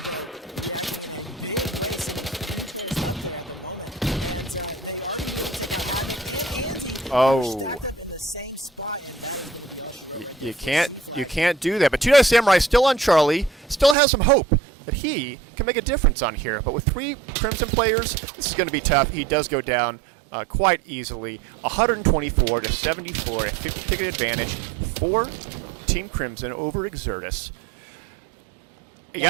though, reacting in a big way, sending 3 players up there at the moment. And they are going to be able to take out Havoc and Andy, who are stacked up in the same spot. And that is going to be all she wrote right there for C flag. You can't do that. But Two Dice Samurai still on Charlie, still has some hope that he can make a difference on here. But with 3 Crimson players, this is going to be tough. He does go down quite easily. 124 to 74, a 50-ticket advantage for Team Crimson over Exertus. You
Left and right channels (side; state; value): left; drops out; at 14.0 s